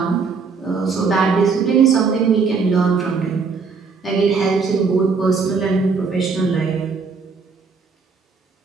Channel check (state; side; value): quieter; left; 4.9 dB